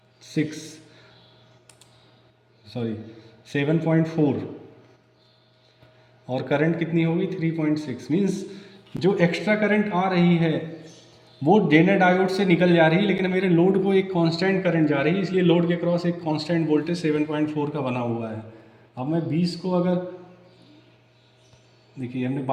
और करंट कितनी होगी 3.6। मीन्स जो एक्स्ट्रा करंट आ रही है वो जेनर डायोड से निकल जा रही है, लेकिन मेरे लोड को एक कांस्टेंट करंट जा रही है, इसलिए लोड के क्रॉस एक कांस्टेंट वोल्टेज 7.4 का बना हुआ है। अब मैं 20 को अगर देखिए हमने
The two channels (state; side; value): identical; both; correlation 1.00